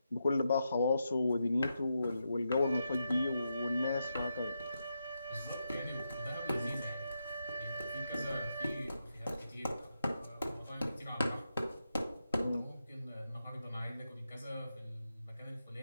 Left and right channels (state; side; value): inverted; both; correlation -0.85